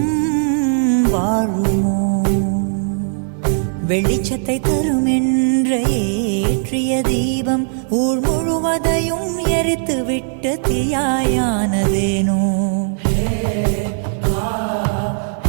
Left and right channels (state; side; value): silent; left; 67 dB below the other